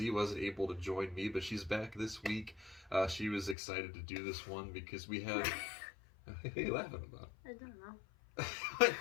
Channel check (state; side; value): drops out; right; at 3.6 s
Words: wasn't able to join me, but she's back this week. She was excited to do this one because we have... What are you laughing about? I don't know.